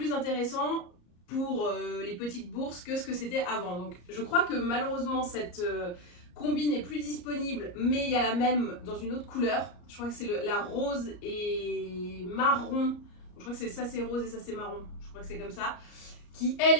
intéressants pour les petites bourses que ce que c'était avant. Donc je crois que malheureusement cette combi n'est plus disponible, mais il y a la même dans une autre couleur. Je crois que c'est la rose et marron. Je crois que c'est ça c'est rose et ça c'est marron. Je crois que c'est comme ça. Qui elle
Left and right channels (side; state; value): right; late; 34 ms